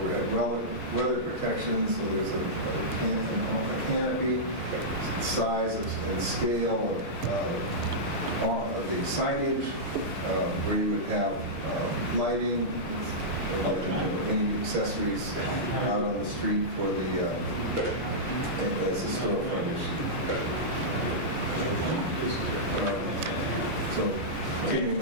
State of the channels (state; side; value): late; left; 6.6 ms